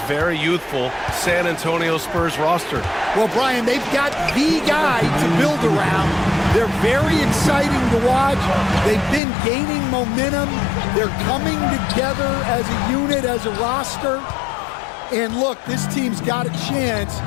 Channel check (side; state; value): right; drops out; at 9.2 s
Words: very youthful San Antonio Spurs roster? Well, Brian, they've got the guy to build around. They're very exciting to watch. They've been gaining momentum. They're coming together as a unit, as a roster. And look, this team's got a chance